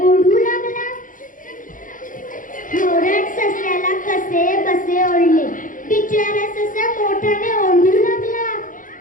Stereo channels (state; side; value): late; right; 0.39 ms